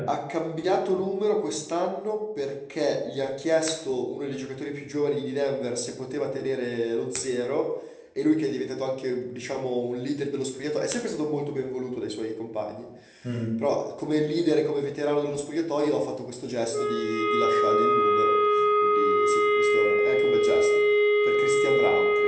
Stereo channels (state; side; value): identical; both; correlation 1.00